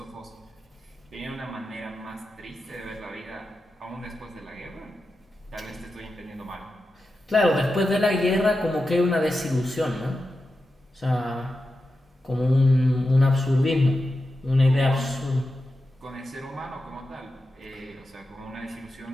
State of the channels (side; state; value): both; normal; correlation 0.90